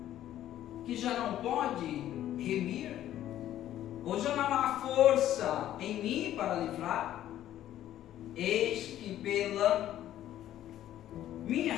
que já não pode remir? Ou já não há força em mim para livrar? Eis que pela minha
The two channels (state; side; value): quieter; right; 12.4 dB